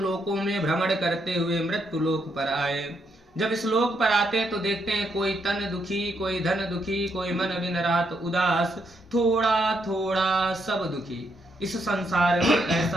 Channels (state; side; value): normal; both; correlation 0.77